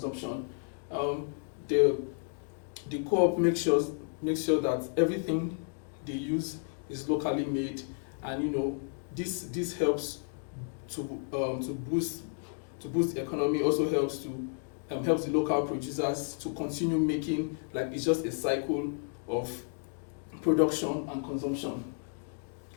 The co-op makes sure that everything they use is locally made, and this helps to boost the economy. Also helps the local producers to continue making, like, it's just a cycle of production and consumption.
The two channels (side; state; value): right; silent; 56 dB below the other